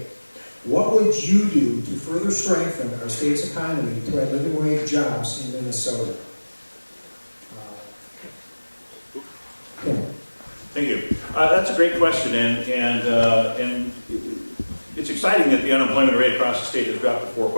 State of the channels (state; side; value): inverted; both; correlation -1.00